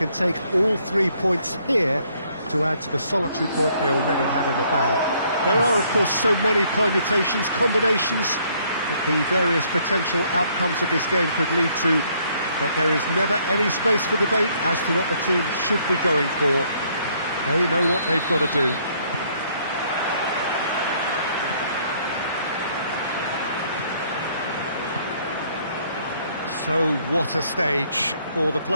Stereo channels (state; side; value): inverted; both; correlation -0.66